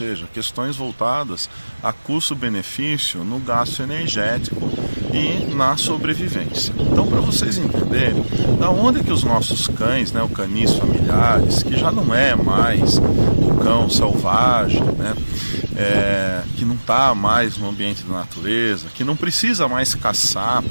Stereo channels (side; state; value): both; inverted; correlation -1.00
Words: questões voltadas a custo-benefício no gasto energético e na sobrevivência. Então, para vocês entenderem, da onde que os nossos cães, né, o canis familiares, que já não é mais o cão selvagem, né, que não está mais no ambiente da natureza, que não precisa mais caçar